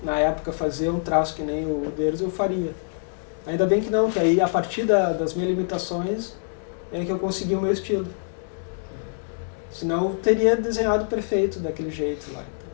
na época, fazer um traço que nem o Uderzo, eu faria. Ainda bem que não, que aí a partir das minhas limitações é que eu consegui o meu estilo. Senão eu teria desenhado perfeito daquele jeito lá.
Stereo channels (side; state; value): right; silent; digital silence